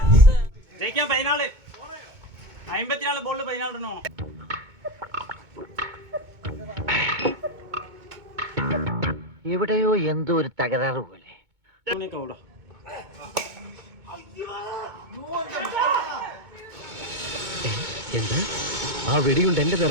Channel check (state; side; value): late; left; 2.2 ms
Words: ജയിക്കാൻ 14 54 ബോളിൽ 14 റണ്ണോ. എവിടെയോ എന്തോ ഒരു തകരാറ് പോലെ. എന്താ ആ വെടിയുണ്ട് എന്റെ